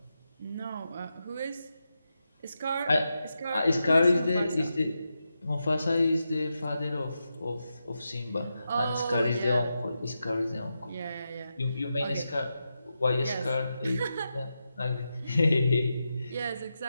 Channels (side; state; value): both; inverted; correlation -0.88